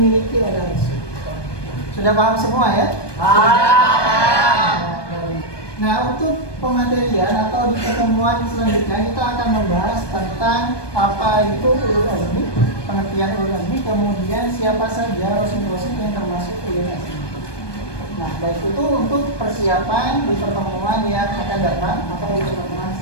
oleh Rasul. Sudah paham semua ya? Nah, untuk pematerian atau di pertemuan selanjutnya kita akan membahas tentang apa itu ulul azmi, pengertian ulul azmi, kemudian siapa saja rasul-rasul yang termasuk ulul azmi. Nah, baik itu untuk persiapan di pertemuan yang akan datang atau di pertemuan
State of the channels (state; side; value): late; right; 1.2 ms